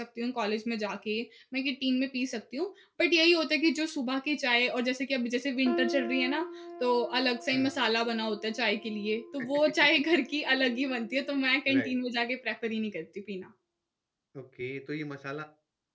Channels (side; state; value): both; identical; correlation 1.00